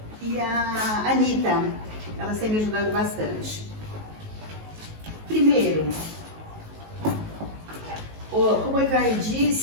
E a Anitta, elas têm me ajudado bastante. Primeiro, como o Ivar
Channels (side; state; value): left; late; 19 ms